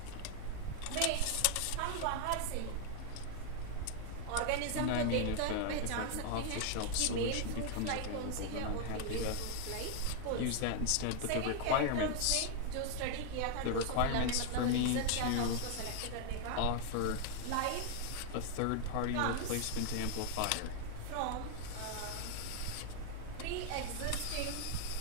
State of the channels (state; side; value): different; both; correlation 0.00